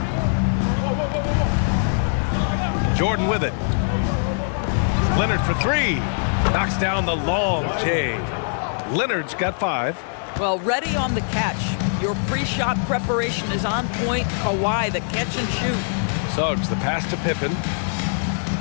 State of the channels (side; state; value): right; silent; 64 dB below the other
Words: Jordan with it. Leonard for 3. Knocks down the long J. Leonard's got 5. Well, ready on the catch. Your pre-shot preparation is on point. Kawhi, the catch and shoot. Suggs, the pass to Pippen.